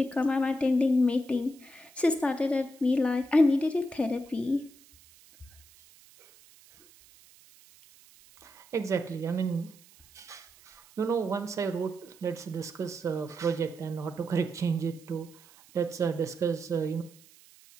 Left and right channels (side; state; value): right; noise; hiss, 25 dB below the sound